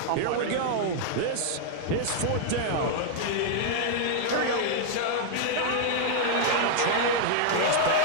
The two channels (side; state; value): both; different; correlation -0.01